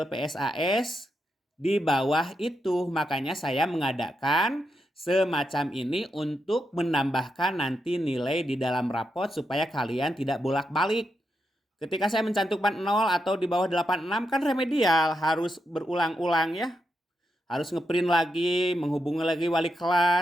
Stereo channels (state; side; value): normal; both; correlation 0.84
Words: PSAS di bawah itu. Makanya saya mengadakan semacam ini untuk menambahkan nanti nilai di dalam rapot supaya kalian tidak bolak-balik. Ketika saya mencantumkan 0 atau di bawah 86 kan remedial, harus berulang-ulang ya. Harus ngeprint lagi, menghubungi lagi wali